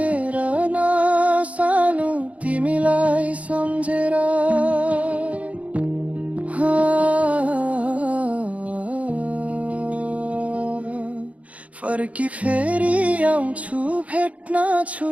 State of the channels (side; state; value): left; late; 0.066 ms